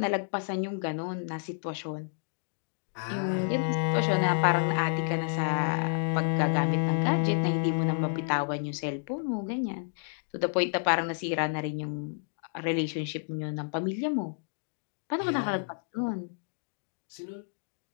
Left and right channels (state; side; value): silent; right; digital silence